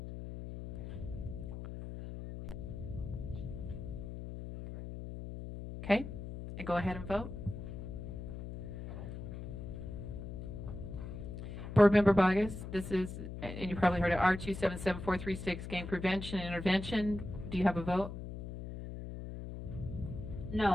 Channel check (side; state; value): left; noise; hum, 8 dB below the sound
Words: Okay, and go ahead and vote. Board Member Bogus, this is, and you probably heard it, R277436, Gang Prevention and Intervention. Do you have a vote?